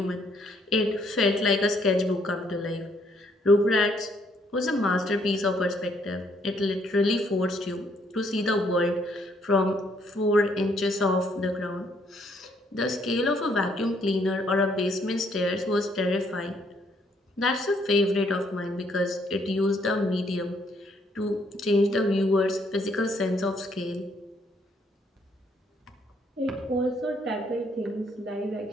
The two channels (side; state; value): both; normal; correlation 0.69